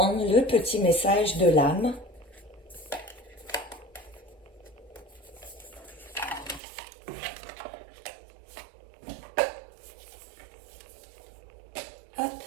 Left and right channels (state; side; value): drops out; left; at 6.6 s